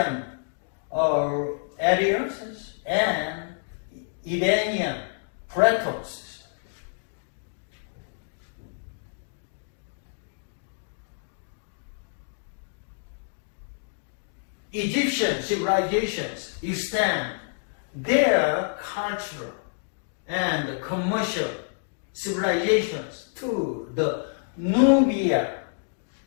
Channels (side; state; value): right; silent; digital silence